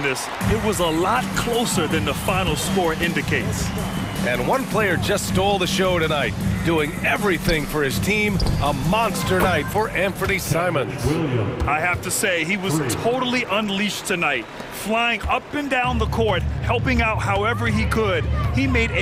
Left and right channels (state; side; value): identical; both; correlation 1.00